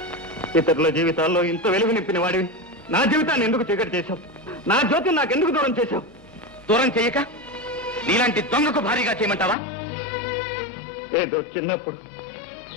ఇతరుల జీవితాల్లో ఇంత వెలుగు నింపిన వాడివి నా జీవితాన్ని ఎందుకు చీకటి చేశావు? నా జ్యోతిని నాకెందుకు దూరం చేశావు? దూరం చేయక నీలాంటి దొంగకు భారీగా చేయమంటావా? ఏదో చిన్నప్పుడు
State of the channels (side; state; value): right; drops out; at 9.6 s